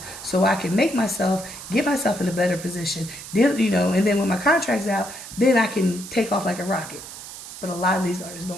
so I can get myself in a better position. Then, you know, and then when my contract's out, then I can take off like a rocket. But a lot of these artists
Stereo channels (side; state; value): right; noise; hiss, 13 dB below the sound